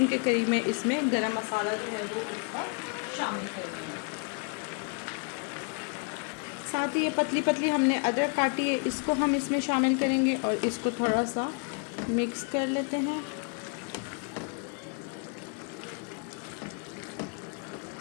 के करीब में इसमें गरम मसाला जो है वो इसका शामिल करेंगे। साथ ही ये पतली पतली हमने अदरक काटी है, इसको हम इसमें शामिल करेंगे और इसको थोड़ा सा मिक्स कर लेते हैं।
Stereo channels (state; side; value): quieter; right; 38.1 dB